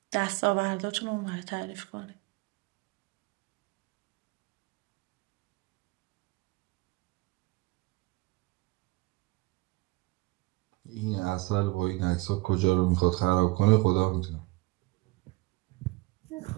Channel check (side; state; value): left; quieter; 22.8 dB